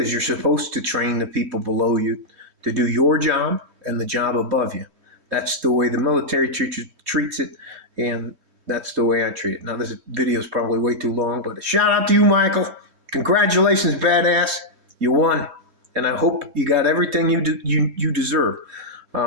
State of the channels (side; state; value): left; late; 3.2 ms